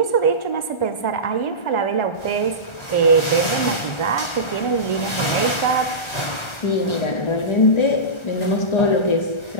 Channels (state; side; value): late; right; 1.4 ms